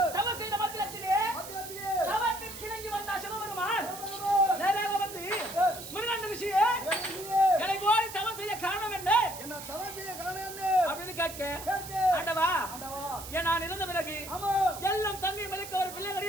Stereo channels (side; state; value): right; noise; hiss, 12 dB below the sound